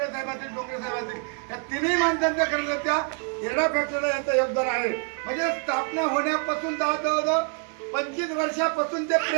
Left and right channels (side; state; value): left; quieter; 39.1 dB